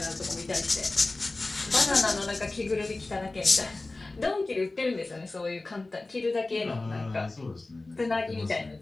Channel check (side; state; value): right; quieter; 3.2 dB